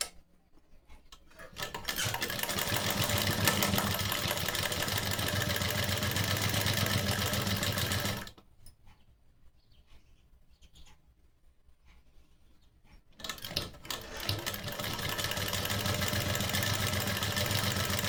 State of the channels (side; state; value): both; identical; correlation 1.00